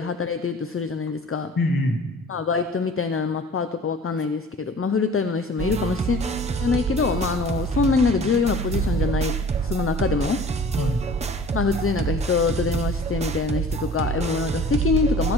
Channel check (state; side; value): normal; both; correlation 0.46